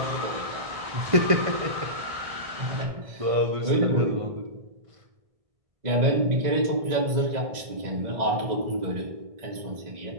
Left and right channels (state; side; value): late; left; 1.6 ms